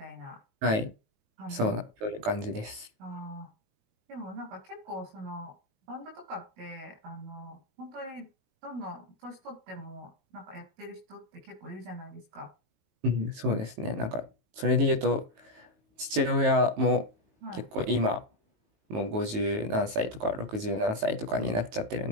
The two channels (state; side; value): late; left; 19 ms